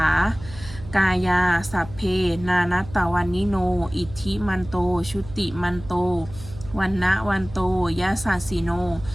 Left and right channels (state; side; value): noise; right; hum, 15 dB below the sound